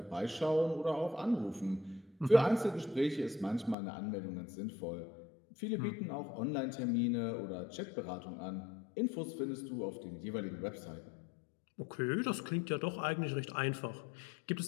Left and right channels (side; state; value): right; drops out; at 3.8 s